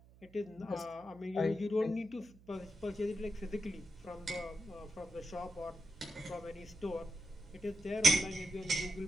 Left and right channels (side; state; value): right; noise; hum, 24 dB below the sound